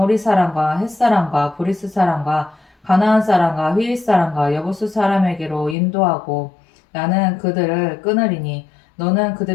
사람과 헷 사람과 브리스 사람과 가나안 사람과 휘릿 사람과 여부스 사람에게로 인도하고 나는 그들을 끊으리니 너는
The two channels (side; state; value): right; drops out; at 5.8 s